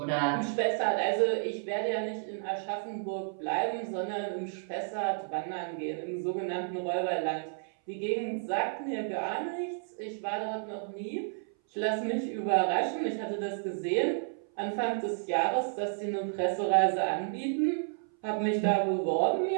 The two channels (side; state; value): left; silent; 57 dB below the other